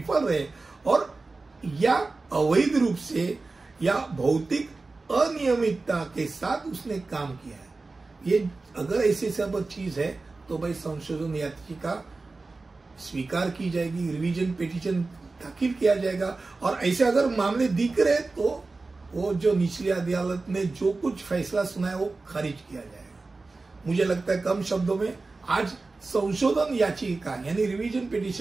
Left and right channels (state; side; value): quieter; left; 3.6 dB